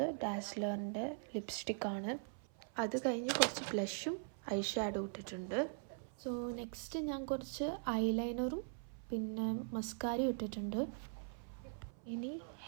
ഡാസ്ലറിൻ്റെ ലിപ്സ്റ്റിക്കാണ്. അത് കഴിഞ്ഞ് കുറച്ച് ബ്ലഷും ഐ ഷാഡോ ഇട്ടിട്ടുണ്ട്. സോ നെക്സ്റ്റ് ഞാൻ കുറച്ച് ഐലൈനറും പിന്നെ മസ്കാരയും ഇട്ടിട്ടുണ്ട്. ഇനി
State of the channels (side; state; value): left; silent; 50 dB below the other